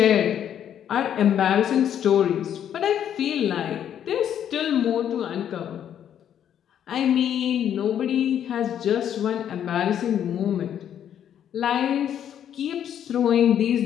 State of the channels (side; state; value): right; quieter; 9.7 dB